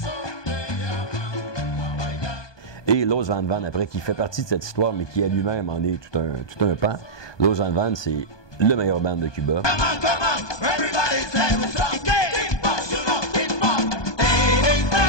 Et Los Van Van, après, qui fait partie de cette histoire, mais qui à lui-même en est tout un pan. Los Van Van, c'est le meilleur band de Cuba.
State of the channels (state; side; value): late; right; 1.2 ms